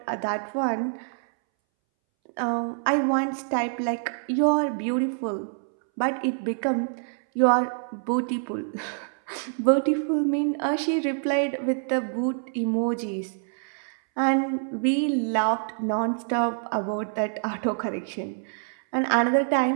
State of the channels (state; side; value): silent; left; 61 dB below the other